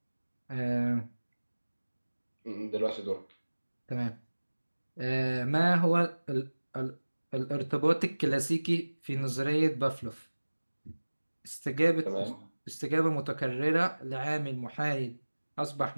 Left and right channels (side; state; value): both; inverted; correlation -1.00